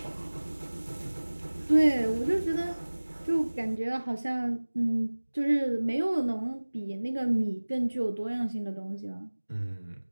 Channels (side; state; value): both; inverted; correlation -1.00